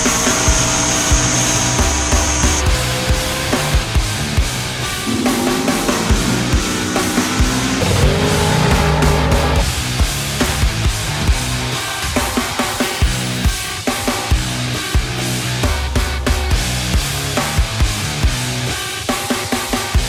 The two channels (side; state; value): both; identical; correlation 1.00